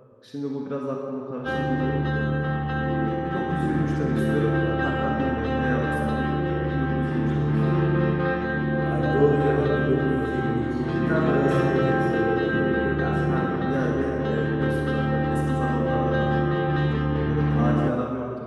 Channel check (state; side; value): identical; both; correlation 1.00